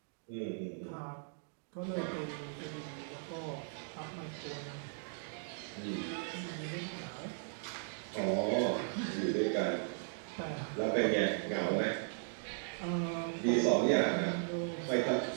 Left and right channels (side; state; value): left; silent; digital silence